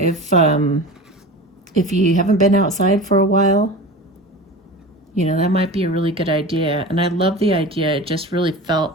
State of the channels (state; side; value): normal; both; correlation 0.32